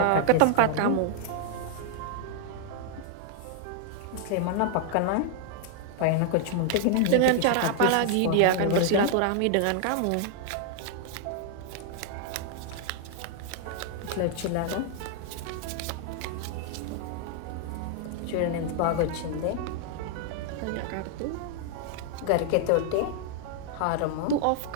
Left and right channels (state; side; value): different; both; correlation 0.00